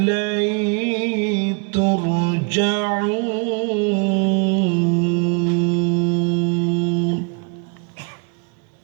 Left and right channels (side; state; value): left; quieter; 36.9 dB